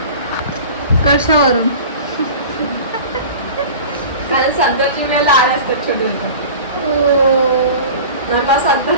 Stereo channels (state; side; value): inverted; both; correlation -0.38